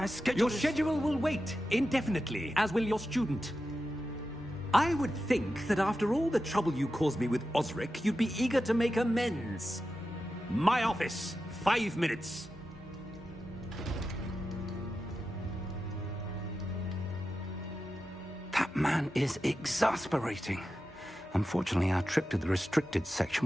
schedule Your schedule will wait indefinitely, as will your student. I would think that after all the trouble you caused me with Osric, you'd be eager to make amends. My office, 5 minutes. That man is exasperating. Unfortunately, our trip to the restricted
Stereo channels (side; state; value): both; normal; correlation 0.91